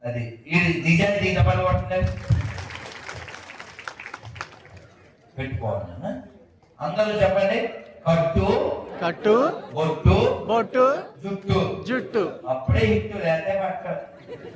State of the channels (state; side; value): identical; both; correlation 1.00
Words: అది నిజాన్ని పని పడుతుంది. పెట్టుకోవాలి నాన్న. అందరూ చెప్పండి. కట్టు, కట్టు, బొట్టు, బొట్టు, జుట్టు. జుట్టు. అప్పుడే హిట్టు లేదే పట్ట